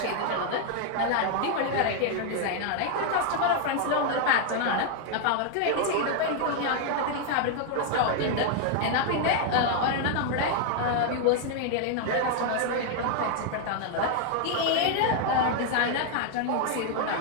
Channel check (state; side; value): different; both; correlation 0.00